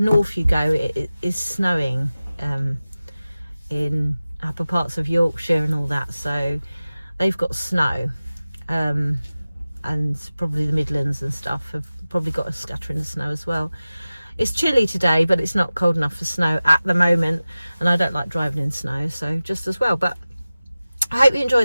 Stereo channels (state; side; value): inverted; both; correlation -0.96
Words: you go, it is snowing in upper parts of Yorkshire and all that, so they've got snow, and probably the Midlands and stuff have probably got a scattering of snow as well. It's chilly today, but it's not cold enough for snow at the moment, and I don't like driving in snow, so just as well. But I hope you